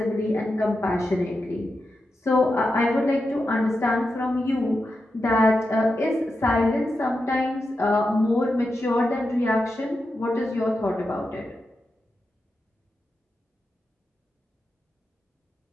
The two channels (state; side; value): normal; both; correlation 0.89